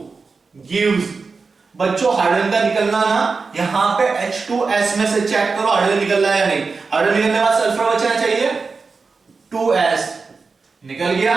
गिव्स, बच्चों हाइड्रोजन का निकलना ना, यहां पे H2S में से चेक करो हाइड्रोजन निकल रहा है या नहीं। हाइड्रोजन निकलने के बाद सल्फर बचना चाहिए 2S, निकल गया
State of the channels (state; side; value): quieter; left; 4.5 dB